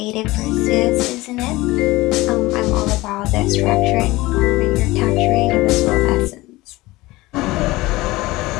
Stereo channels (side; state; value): right; quieter; 19.8 dB